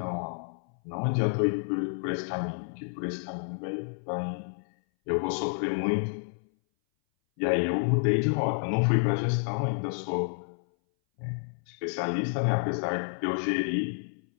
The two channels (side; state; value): right; silent; 58 dB below the other